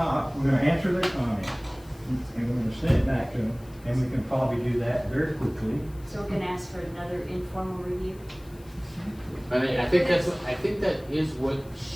we're gonna answer their comments, and we're gonna send it back to them, and we can probably do that very quickly. So we're gonna ask for another informal review? I mean, I think that is what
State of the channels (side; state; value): left; noise; hiss, 26 dB below the sound